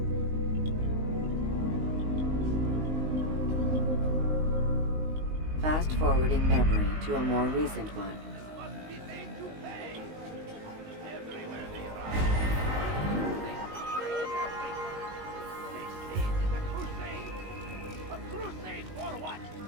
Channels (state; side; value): late; left; 19 ms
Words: Fast forwarding memory to a more recent one.